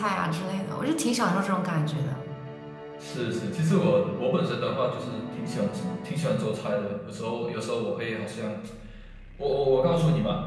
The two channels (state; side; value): identical; both; correlation 1.00